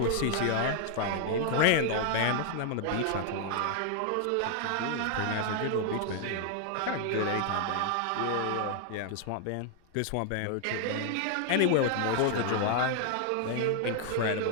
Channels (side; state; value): both; different; correlation 0.00